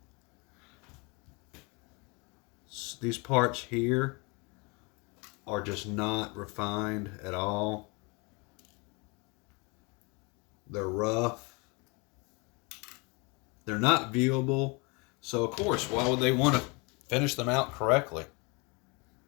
These parts here are just not refined at all. They're rough. They're not viewable. So, of course, why would they want to finish them out correctly?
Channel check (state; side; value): quieter; right; 29.5 dB